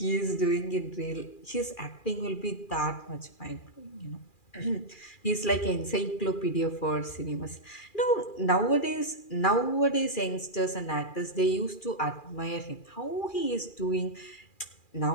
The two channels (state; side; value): late; right; 2.4 ms